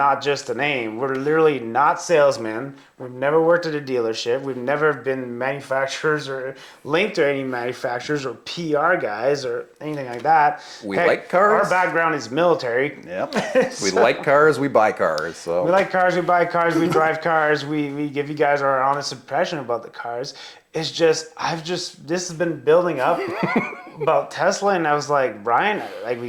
just a name. We're literally not salesmen. We've never worked at a dealership. We've never been manufacturers or linked to any manufacturers or PR guys or anything like that. We like cars. Our background is military. Yep. We like cars. We buy cars. So we like cars. We buy cars. We drive cars. We give you guys our honest impression about the cars. It's just, this has been building up about Tesla, and I was like, Brian, like,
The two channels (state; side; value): identical; both; correlation 1.00